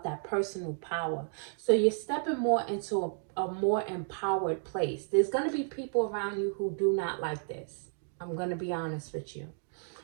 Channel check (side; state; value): left; silent; digital silence